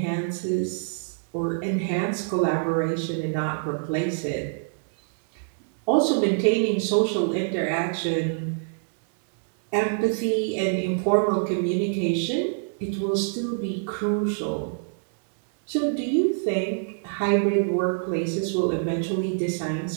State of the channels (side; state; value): left; silent; digital silence